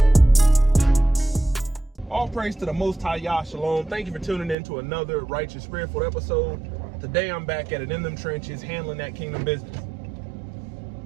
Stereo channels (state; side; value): drops out; left; at 4.5 s